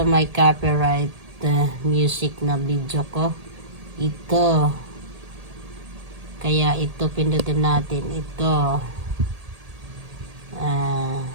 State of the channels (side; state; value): left; late; 1.8 ms